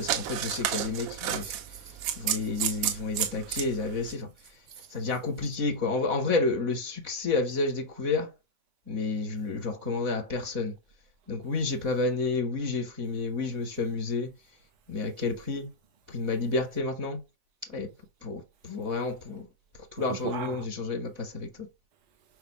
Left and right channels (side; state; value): left; late; 4.1 ms